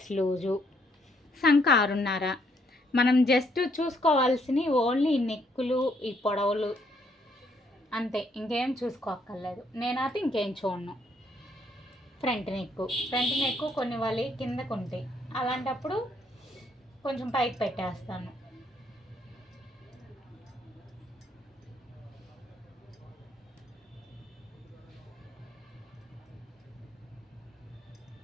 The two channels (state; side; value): normal; both; correlation 0.71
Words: లూజు, సంక 6.5. మనం జస్ట్ చూసుకోవాల్సినవి ఓన్లీ నెక్కులు, ఈ పొడవులు అంతే, ఇంకేం చూసుకోక్కర్లేదు. నేనైతే ఇంకేం చూడను. ఫ్రంట్ నెక్కు కొన్ని వాళ్ళు కిందకు ఉంటాయి, అలాంటప్పుడు కొంచెం పైకి పెట్టేస్తాను.